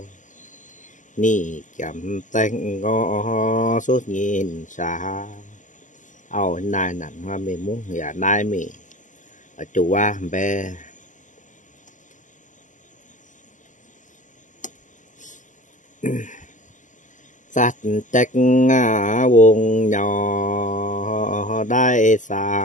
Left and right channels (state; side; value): late; right; 0.37 ms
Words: ni chậm tay ngó suốt nhìn xa ao này nặng hoa mình muốn nhà nay mình ở chủ qua bé sát trách vùng nhỏ đại